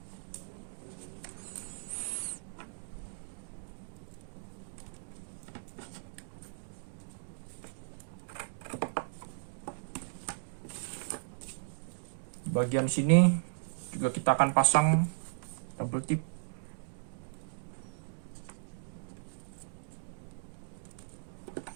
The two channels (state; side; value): silent; left; digital silence